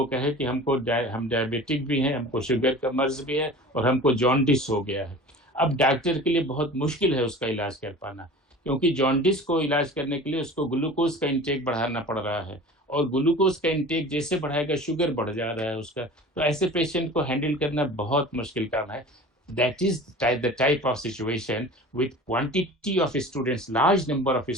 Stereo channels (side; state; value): both; normal; correlation 0.39